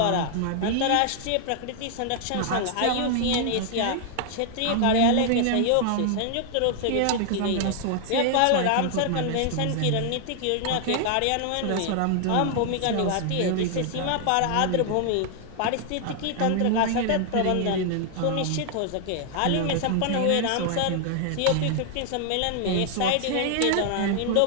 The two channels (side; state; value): both; different; correlation 0.00